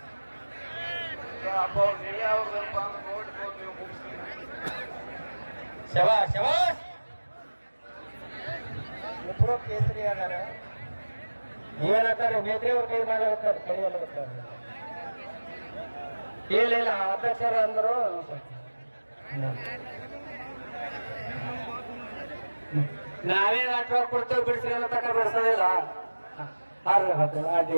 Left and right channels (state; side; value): inverted; both; correlation -1.00